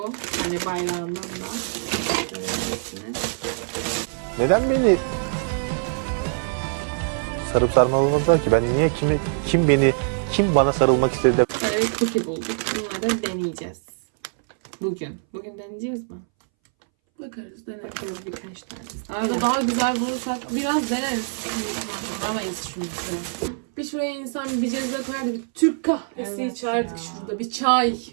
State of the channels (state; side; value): silent; left; 62 dB below the other